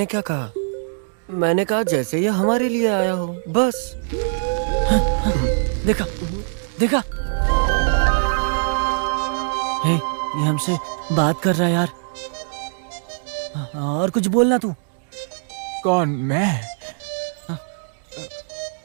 क्या कहा? मैंने कहा जैसे ये हमारे लिए आया हो, बस। देखा देखा, हे, ये हमसे बात कर रहा है यार। और कुछ बोलना तू। कौन? मैं?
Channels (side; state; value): left; silent; digital silence